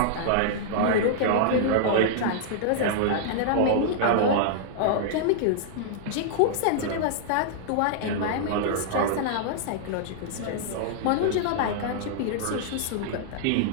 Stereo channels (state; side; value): different; both; correlation -0.01